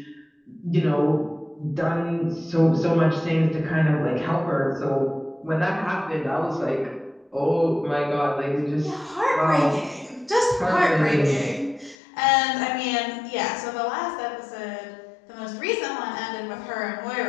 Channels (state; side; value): drops out; right; at 12.0 s